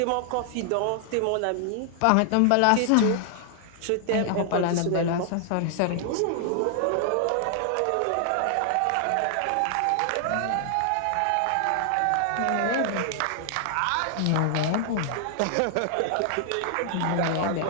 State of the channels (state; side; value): different; both; correlation 0.00